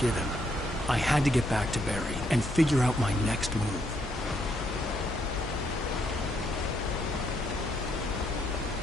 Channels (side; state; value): both; normal; correlation 0.74